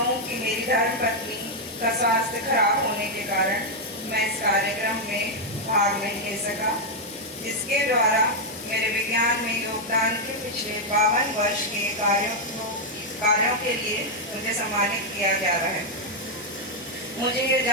कि मेरी धर्मपत्नी का स्वास्थ्य खराब होने के कारण मैं इस कार्यक्रम में भाग नहीं ले सका, जिसके द्वारा मेरे विज्ञान में योगदान के पिछले 52 वर्ष के कार्यों के लिए मुझे सम्मानित किया जा रहा है। मुझे ये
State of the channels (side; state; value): both; normal; correlation -0.01